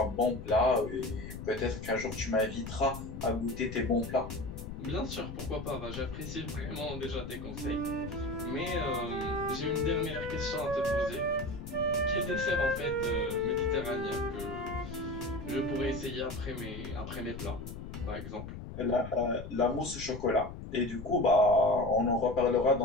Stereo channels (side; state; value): left; noise; rumble, 10 dB below the sound